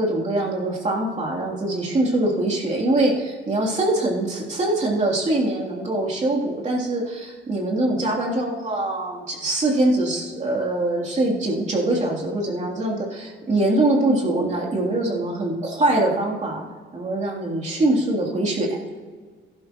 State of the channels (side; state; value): both; normal; correlation 0.51